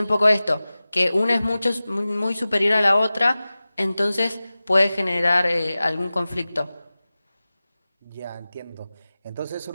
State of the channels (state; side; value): inverted; both; correlation -0.97